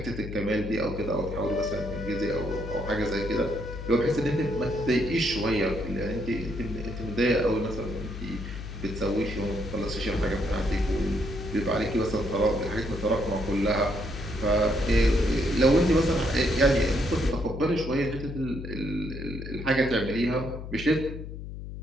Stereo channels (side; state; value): left; noise; hum, 9 dB below the sound